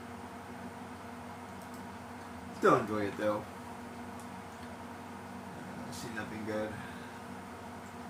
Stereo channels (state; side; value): identical; both; correlation 1.00